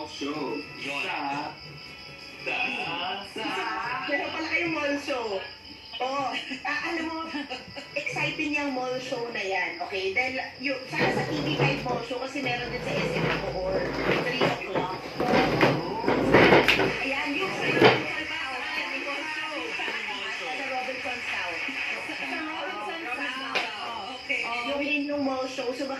show. Meron pala kayong mall show. Alam mo, exciting yung mall show na yan, okay? Dahil sana sa TV5 mall show kasi meron din sa SM Bacoor, 3 o'clock. Ayan, yung sa Robinson's South. Yung mall show, so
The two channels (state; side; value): identical; both; correlation 1.00